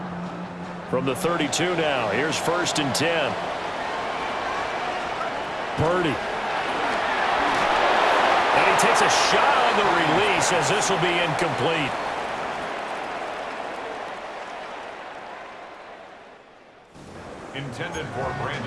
From the 32 now, here's 1st and 10. Purdy. And he takes a shot on the release as this will be incomplete. Intended for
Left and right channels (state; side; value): identical; both; correlation 1.00